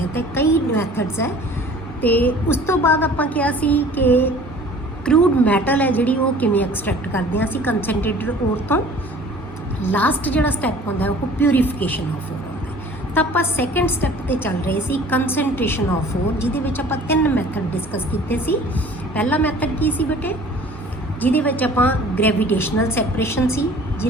ਹਾਂ। ਤੇ ਕਈ ਮੈਥਡਸ ਹੈ। ਤੇ ਉਸ ਤੋਂ ਬਾਅਦ ਆਪਾਂ ਕਿਹਾ ਸੀ ਕਿ ਕਰੂਡ ਮੈਟਲ ਹੈ ਜਿਹੜੀ ਉਹ ਕਿਵੇਂ ਐਕਸਟ੍ਰੈਕਟ ਕਰਦੇ ਹਾਂ ਅਸੀਂ ਕੰਸਨਟ੍ਰੇਟਡ ਓਰ ਤੋਂ। ਲਾਸਟ ਜਿਹੜਾ ਸਟੈਪ ਹੁੰਦਾ ਉਹ ਪਿਊਰੀਫਿਕੇਸ਼ਨ ਆਫ ਓਰ ਹੁੰਦਾ। ਤਾਂ ਆਪਾਂ ਸੈਕੰਡ ਸਟੈਪ ਤੇ ਚੱਲ ਰਹੇ ਸੀ, ਕੰਸਨਟ੍ਰੇਸ਼ਨ ਆਫ ਓਰ, ਜਿਹਦੇ ਵਿੱਚ ਆਪਾਂ 3 ਮੈਥਡ ਡਿਸਕਸ ਕੀਤੇ ਸੀ। ਪਹਿਲਾ ਮੈਥਡ ਕੀ ਸੀ ਬੇਟੇ? ਜਿਹਦੇ ਵਿੱਚ ਆਪਾਂ ਗ੍ਰੈਵੀਟੇਸ਼ਨਲ ਸੈਪਰੇਸ਼ਨ ਸੀ,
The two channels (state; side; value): normal; both; correlation 0.48